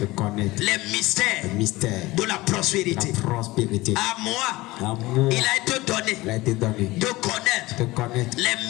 De connaître. Les mystères. Le mystère. De la prospérité. La prospérité. À moi. À moi. Il a été donné. Il a été donné. De connaître. De connaître.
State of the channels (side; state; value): right; quieter; 19.9 dB